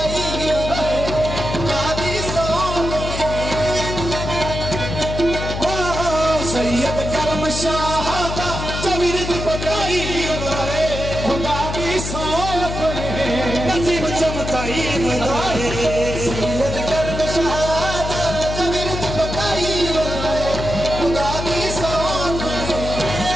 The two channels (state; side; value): noise; left; hum, 5 dB below the sound